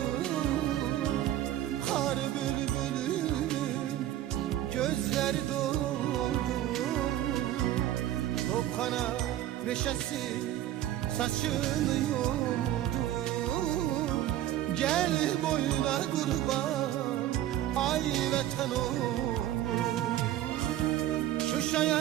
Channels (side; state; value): left; quieter; 12.9 dB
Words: Kar bülbülünün gözleri doldu. Topxana meşesi saçını yordu. Gel boyuna kurban ay vətən oğlum. Şuşa